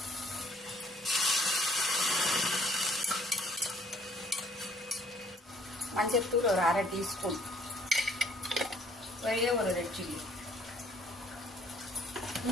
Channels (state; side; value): normal; both; correlation 0.62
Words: மஞ்சத்தூள் ஒரு 1/2 டீஸ்பூன், ஒரே ஒரு ரெட் சில்லி,